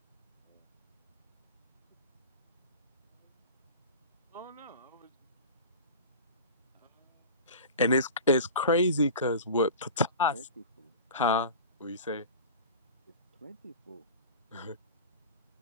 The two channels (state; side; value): inverted; both; correlation -0.35